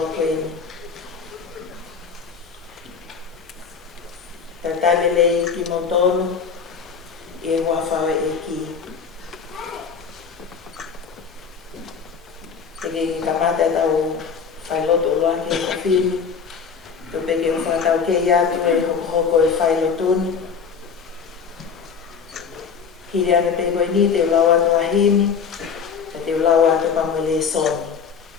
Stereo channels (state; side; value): quieter; right; 6.2 dB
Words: koeni. Tā tālelei ki mo tōru i e whawhawe e ki. Teke ki kamata tau whailoto loa ki e kawhini. Tō peke o whakau ke iatu e hoko e whailotoni. Hiri ane pe koe ni te ulau atu ahimi, te ulau atu pamele soni.